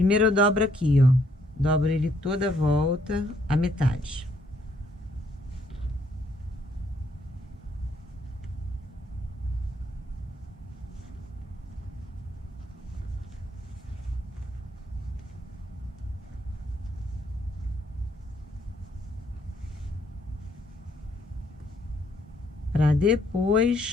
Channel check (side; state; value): both; normal; correlation 0.69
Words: eu dobro aqui, ó. Dobro ele toda a volta, a metade. Para